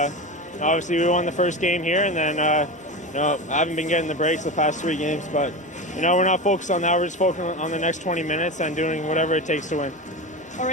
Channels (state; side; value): normal; both; correlation 0.24